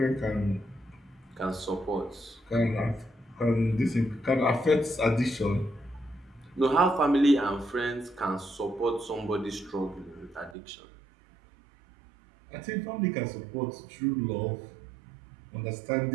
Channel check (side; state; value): left; drops out; at 10.6 s